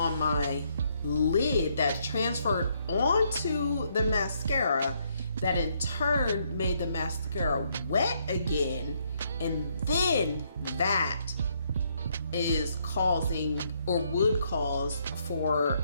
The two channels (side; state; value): both; inverted; correlation -0.72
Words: my lid that transferred onto the mascara, that in turn made the mascara wet again, and then that is causing, or would cause, for